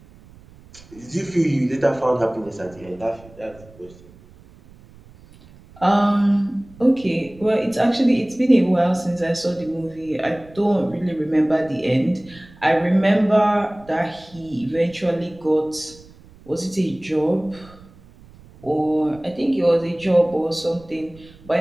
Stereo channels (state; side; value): noise; right; rumble, 23 dB below the sound